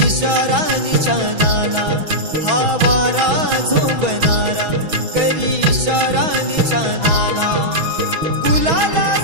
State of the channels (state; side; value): late; left; 6.2 ms